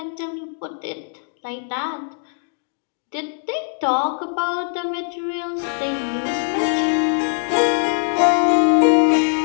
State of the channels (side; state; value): right; silent; digital silence